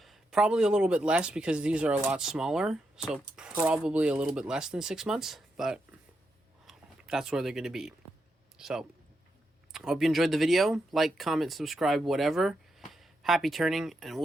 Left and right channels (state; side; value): normal; both; correlation 0.83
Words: probably a little bit less because these are a lot smaller. So probably a little bit less than 6 months, but that's where they're going to be. So I hope you enjoyed the video. Like, comment, subscribe, whatever. Happy turning, and